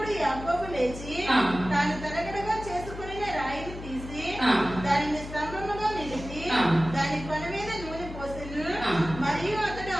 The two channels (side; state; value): left; noise; hum, 11 dB below the sound